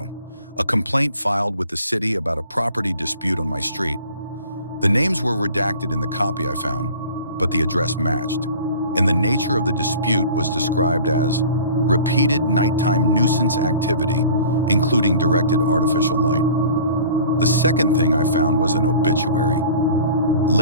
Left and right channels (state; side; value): inverted; both; correlation -0.45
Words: a complaint filed with the city about a property dispute on my street. The names were redacted in the copy I found, but the address matched, and the nature of the dispute was described as repeated nighttime nuisance activity, including directed artificial light. The second thing I found was an obituary.